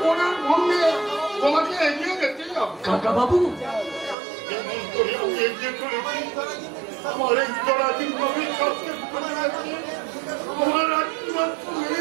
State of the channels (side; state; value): left; drops out; at 4.2 s